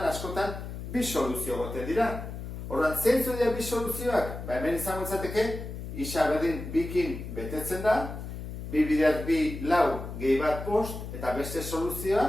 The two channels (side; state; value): left; noise; hum, 8 dB below the sound